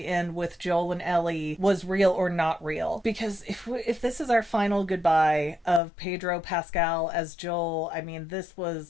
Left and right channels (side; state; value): right; drops out; at 5.8 s